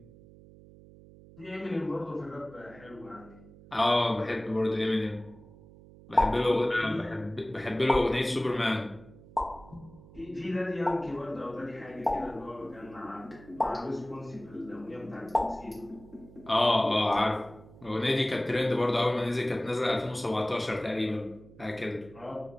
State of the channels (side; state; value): right; noise; hum, 21 dB below the sound